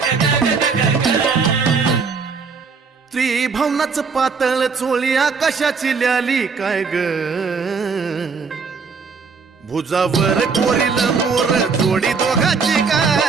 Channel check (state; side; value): quieter; left; 5.1 dB